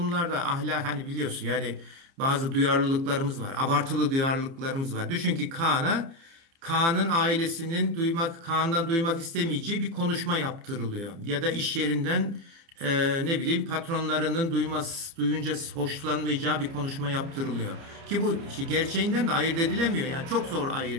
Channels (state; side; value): late; left; 30 ms